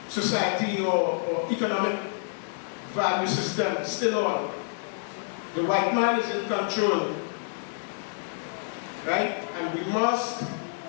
society or economic value system still on. The white man is in control, right? And we must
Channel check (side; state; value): right; silent; digital silence